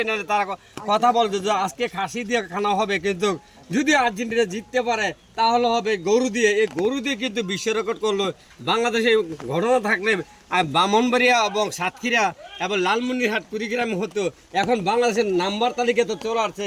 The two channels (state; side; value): identical; both; correlation 1.00